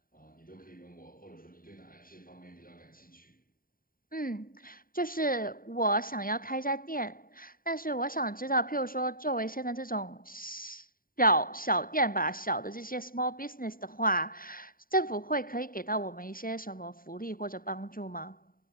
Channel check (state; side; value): late; right; 0.41 ms